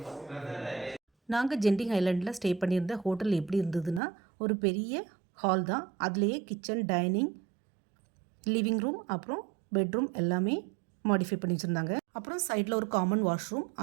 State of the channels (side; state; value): left; drops out; at 4.0 s